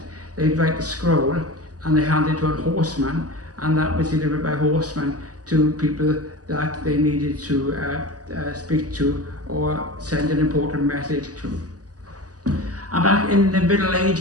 they'd write a scroll and they hand it to a horseman, and that was delivered by horsemen to people that they needed to speak to or send an important message to. And back in the Middle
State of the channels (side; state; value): left; late; 0.67 ms